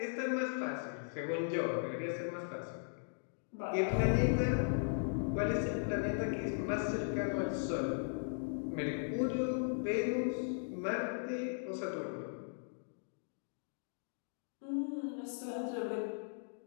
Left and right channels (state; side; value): silent; right; digital silence